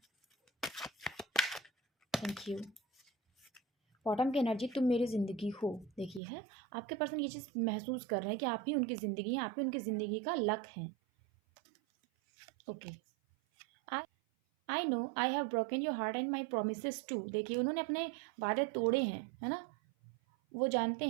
Thank you. बॉटम की एनर्जी, तुम मेरी ज़िंदगी हो। देखिए है, आपके पर्सन ये चीज़ महसूस कर रहे हैं कि आप ही उनकी ज़िंदगी हैं, आप ही उनकी ज़िंदगी का लक हैं। Okay, I know I have broken your heart and my promise too. देखिए उन्होंने अपने वादे तोड़े हैं, है ना, वो जानते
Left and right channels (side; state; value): left; drops out; at 6.2 s